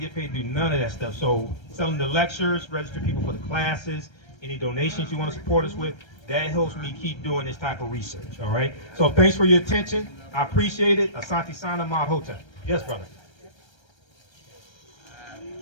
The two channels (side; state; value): right; late; 1.3 ms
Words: get paid to do none of that stuff. So selling the lectures, register people for the classes, any donations you want to support us with, that helps me keep doing this type of research, all right? So thanks for your attention. I appreciate it. Asante Sana Mod Hotel. Yes, brother.